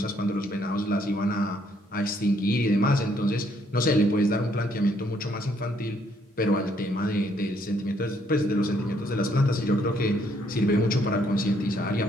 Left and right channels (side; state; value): both; normal; correlation 0.69